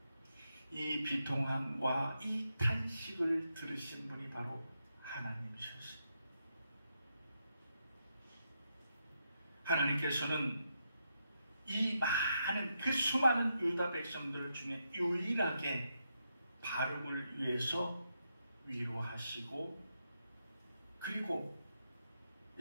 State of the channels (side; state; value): both; inverted; correlation -0.83